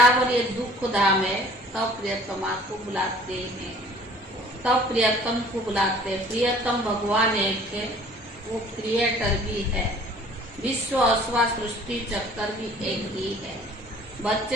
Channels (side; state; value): both; normal; correlation 0.51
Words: ये दुख धाम है, तब प्रियतमा को बुलाते हैं, तब प्रियतम को बुलाते हैं। प्रियतम भगवान एक है, वो क्रिएटर भी है। विश्व अथवा सृष्टि चक्कर भी एक ही है।